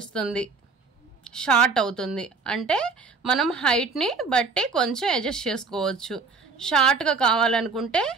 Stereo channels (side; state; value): left; quieter; 4.5 dB